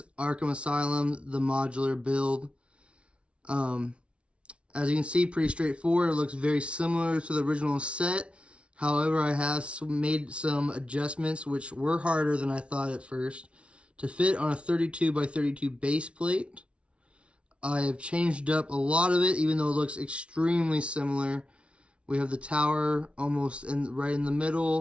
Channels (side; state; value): left; late; 0.060 ms